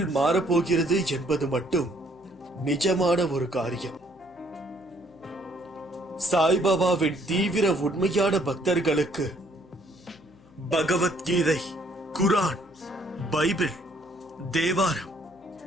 மாறப்போகிறது என்பது மட்டும் நிஜமான ஒரு காரியம். சாய்பாபாவின் தீவிர உண்மையான பக்தர்களுக்கு பகவத்கீதை, குரான், பைபிள், தேவாரம்,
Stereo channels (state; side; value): noise; left; hum, 28 dB below the sound